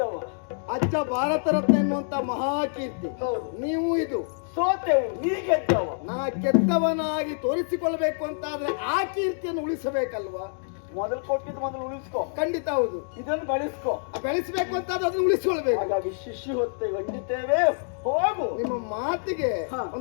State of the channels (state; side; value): silent; right; digital silence